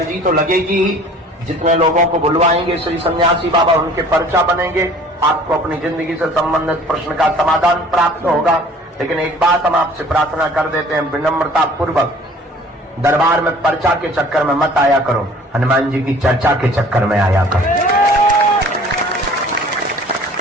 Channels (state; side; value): normal; both; correlation 0.50